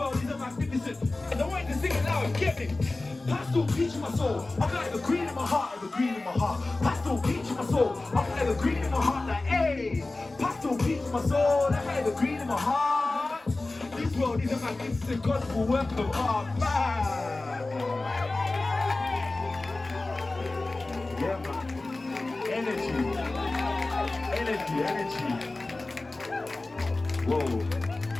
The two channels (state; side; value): quieter; right; 3.1 dB